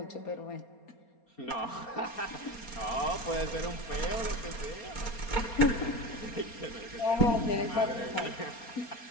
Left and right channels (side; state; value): right; late; 4.3 ms